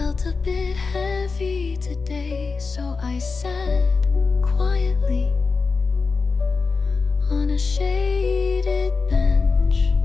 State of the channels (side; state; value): right; quieter; 4.5 dB